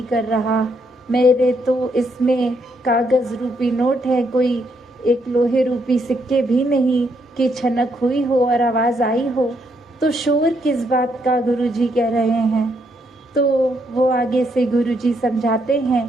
कर रहा। मेरे तो इसमें कागज़ रूपी नोट है, कोई एक लोहे रूपी सिक्के भी नहीं कि छनक हुई हो और आवाज़ आई हो। तो शोर किस बात का गुरुजी कह रहे हैं। तो वो आगे से गुरुजी समझाते हैं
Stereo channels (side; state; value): both; normal; correlation 0.75